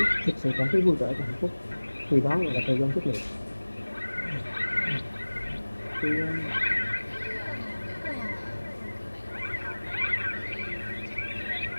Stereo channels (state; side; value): inverted; both; correlation -1.00